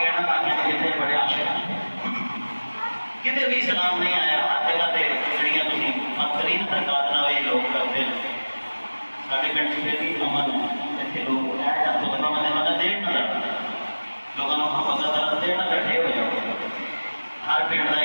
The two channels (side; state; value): both; inverted; correlation -1.00